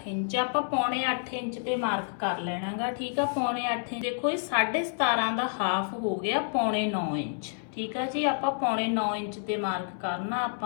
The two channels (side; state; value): right; silent; 59 dB below the other